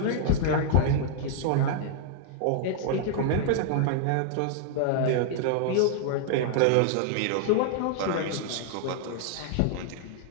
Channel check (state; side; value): different; both; correlation -0.01